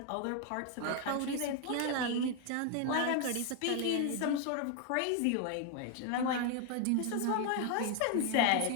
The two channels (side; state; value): both; different; correlation 0.01